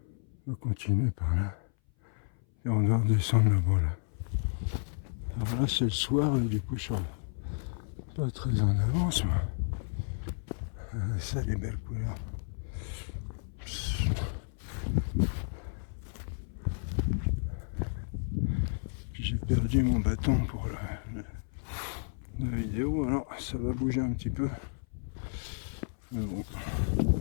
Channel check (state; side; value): silent; right; 56 dB below the other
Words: On va continuer par là. Et on doit redescendre là-bas, là. Alors là, c'est le soir, et du coup, je suis pas très en avance, moi. Ça, les belles couleurs. J'ai perdu mon bâton pour la vidéo, alors ça va bouger un petit peu. Mais bon,